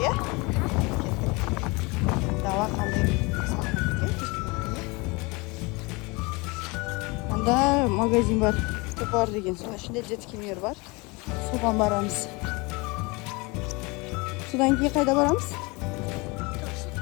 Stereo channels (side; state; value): right; quieter; 26.5 dB